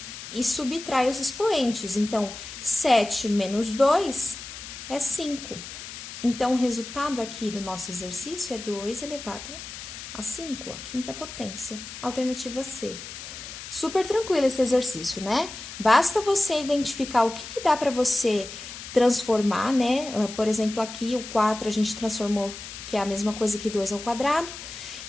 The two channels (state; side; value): noise; left; hiss, 11 dB below the sound